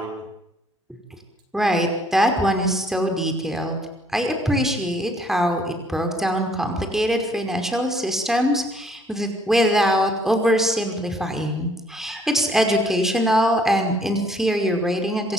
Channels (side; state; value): both; normal; correlation 0.62